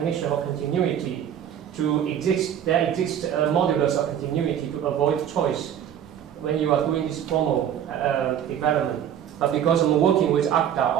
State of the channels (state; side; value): quieter; left; 9.7 dB